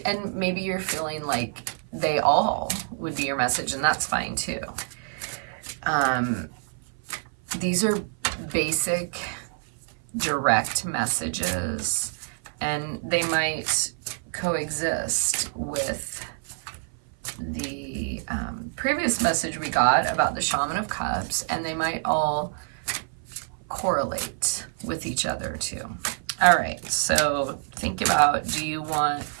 And maybe you're feeling like they all would be your message, and that's fine too. These are basic, direct messages, and they might coexist with the previous message we got about the Shaman of Cups, and they might all correlate with each other too. All right, so think about, do you want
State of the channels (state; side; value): silent; left; 56 dB below the other